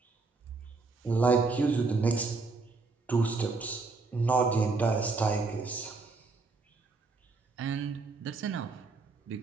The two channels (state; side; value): quieter; left; 4.0 dB